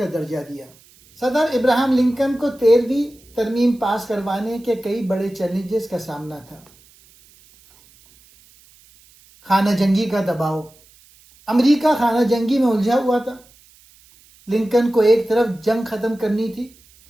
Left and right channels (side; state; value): right; noise; hiss, 28 dB below the sound